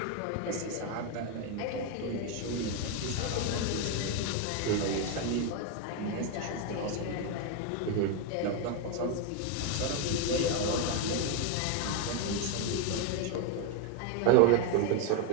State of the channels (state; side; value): different; both; correlation 0.01